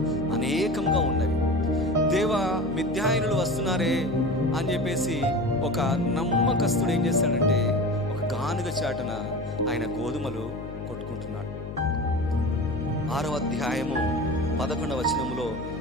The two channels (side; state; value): left; noise; hum, 10 dB below the sound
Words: అనేకంగా ఉన్నవి. దేవా, మిద్యానీయులు వస్తున్నారే అని చెప్పేసి ఒక నమ్మకస్తుడు ఏం చేస్తాడంటే ఒక గానుగ చాటున ఆయన గోధుమలు కొట్టుకుంటున్నాడు. 6వ అధ్యాయము 11వ వచనములో